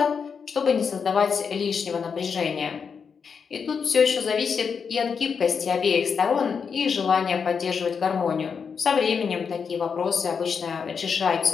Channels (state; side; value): quieter; right; 6.1 dB